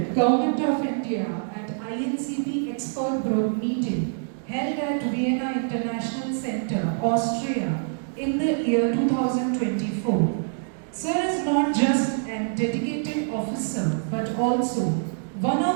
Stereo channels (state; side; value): silent; left; digital silence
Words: Government of India at INCB Expert Group meeting held at Vienna International Center, Austria in the year 2024. Sir is not just a dedicated officer but also one